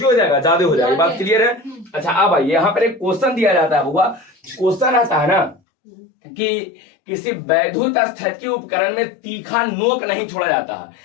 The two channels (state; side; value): drops out; right; at 5.6 s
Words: हो जाएगा, ज्यादा हो जाएगा। बात क्लियर है? अच्छा, अब आइए, यहाँ पर एक क्वेश्चन दिया जाता है बुआ। क्वेश्चन आता है ना कि किसी वैद्युत स्थिति उपकरण में तीखा नोक नहीं छोड़ा जाता